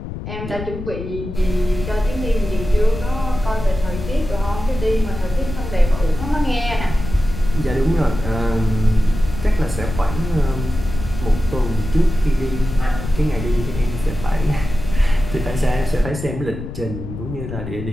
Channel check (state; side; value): noise; left; rumble, 8 dB below the sound